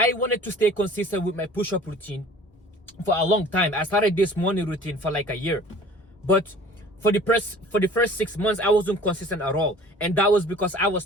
wanted to stay consistent with my push-up routine for a long time. I started this morning routine for like a year, but for the first 6 months I wasn't consistent at all, and that was because I was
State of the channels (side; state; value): both; normal; correlation 0.47